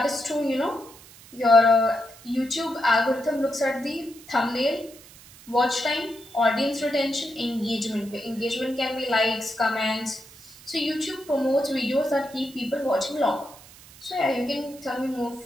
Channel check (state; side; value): noise; right; hiss, 21 dB below the sound